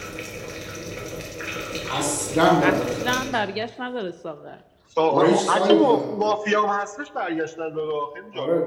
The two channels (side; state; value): both; identical; correlation 1.00